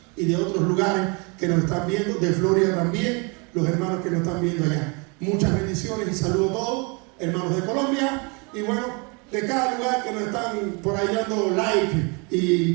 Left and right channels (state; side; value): quieter; left; 31.8 dB